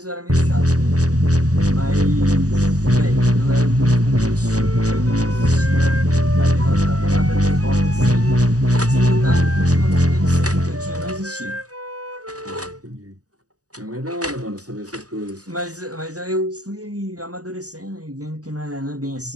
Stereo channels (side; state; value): left; late; 0.67 ms